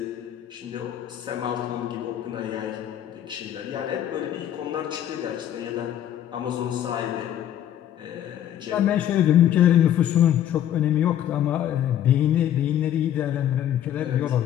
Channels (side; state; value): right; quieter; 11.0 dB